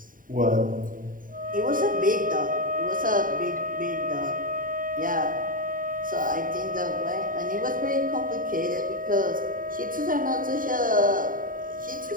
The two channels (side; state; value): left; late; 0.40 ms